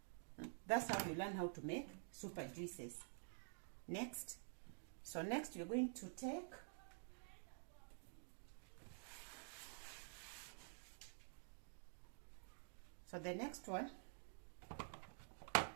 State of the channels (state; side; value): silent; left; digital silence